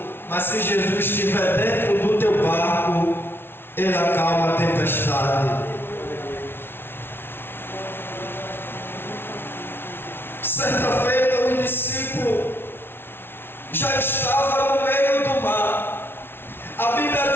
mas se Jesus estiver dentro do teu barco, ele acalma a tempestade. Certa feita, o discípulo já estava no meio do mar. A Bíblia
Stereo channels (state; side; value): late; right; 0.11 ms